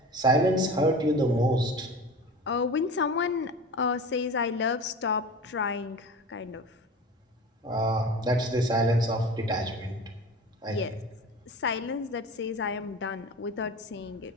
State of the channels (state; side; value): normal; both; correlation 0.35